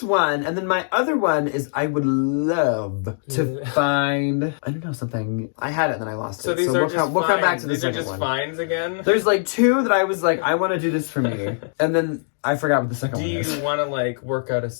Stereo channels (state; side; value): silent; right; digital silence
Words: one. And then my other one is I would love to find, I don't know, something. I had it and then I lost it. So these are we'll come back to the second one. These are just finds again? There's like 2 that I was like, I want to do this for me. And then I forgot what the second one is. Do you want to like work out a